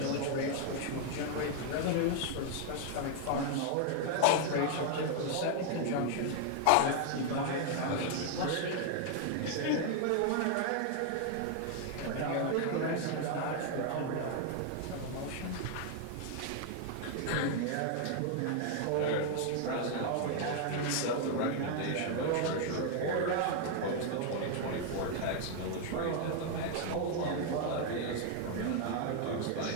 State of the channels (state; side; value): different; both; correlation 0.00